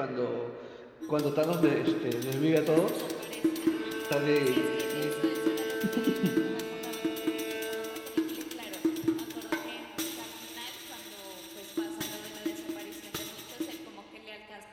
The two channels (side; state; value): both; identical; correlation 1.00